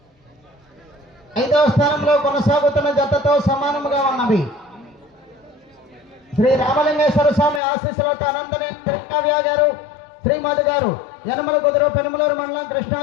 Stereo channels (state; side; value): drops out; right; at 7.6 s